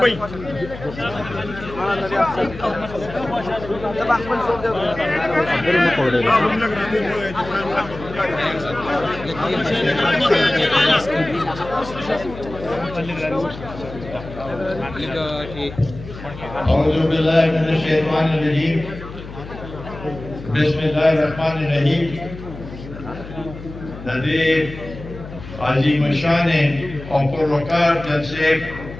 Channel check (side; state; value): left; noise; hum, 13 dB below the sound